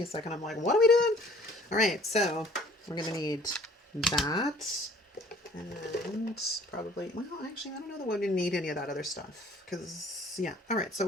a second, I'm like, what are we doing? Alright, so we're going to need that, and probably, well actually I don't know that we're going to need any of that other stuff, because yeah. Alright, so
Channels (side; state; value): both; normal; correlation 0.55